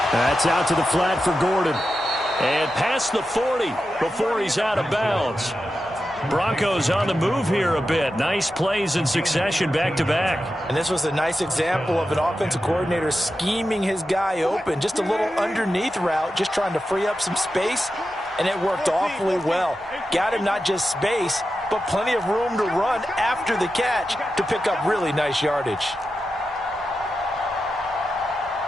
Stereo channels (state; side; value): noise; right; hum, 29 dB below the sound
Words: That's out to the flat for Gordon. And past the 40 before he's out of bounds. Broncos on the move here a bit. Nice plays in succession back-to-back. And this was a nice example of an offensive coordinator scheming his guy open. Just a little underneath route, just trying to free up some space, and it worked awfully well. Got him not just space, but plenty of room to run after the catch to pick up really nice yardage.